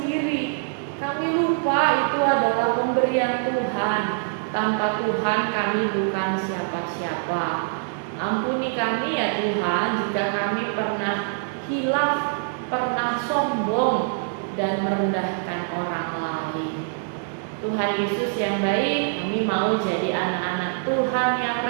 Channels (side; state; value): left; silent; digital silence